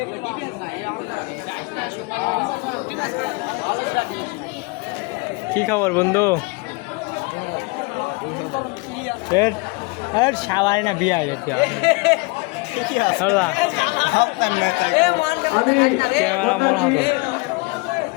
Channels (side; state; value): right; quieter; 27.2 dB